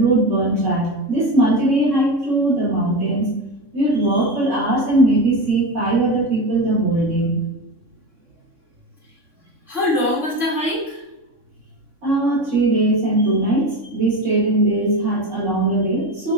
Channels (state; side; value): late; left; 3.6 ms